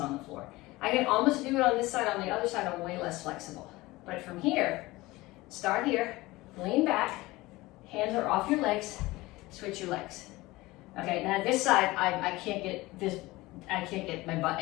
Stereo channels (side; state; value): right; quieter; 20.0 dB